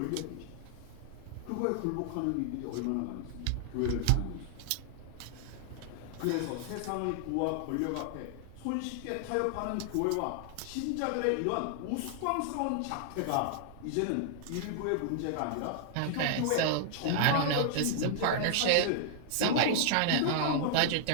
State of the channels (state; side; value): different; both; correlation -0.01